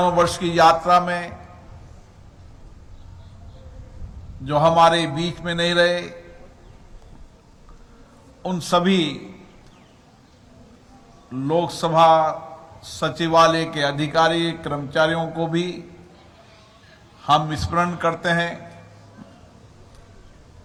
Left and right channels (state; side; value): identical; both; correlation 1.00